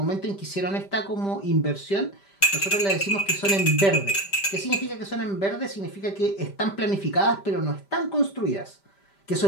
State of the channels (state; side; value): late; right; 5.1 ms